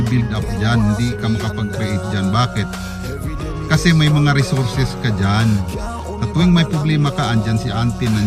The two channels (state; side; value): identical; both; correlation 1.00